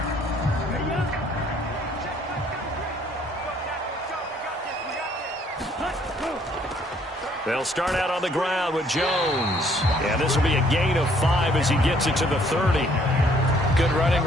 They'll start out on the ground with Jones. And this will be a gain of 5 as he gets it to the 30. Good running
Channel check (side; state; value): both; normal; correlation 0.63